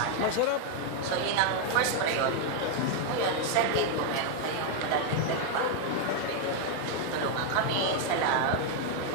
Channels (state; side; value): different; both; correlation 0.00